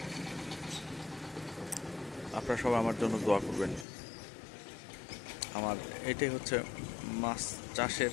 আপনারা সবাই আমার জন্য দোয়া করবেন। আমার এটাই হচ্ছে মাছ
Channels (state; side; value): drops out; right; at 3.9 s